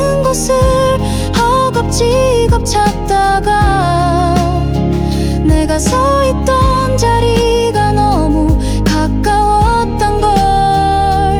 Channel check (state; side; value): identical; both; correlation 1.00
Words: 곳을 허겁지겁 찾다가 내가 서 있던 자리가 너무 가까웠던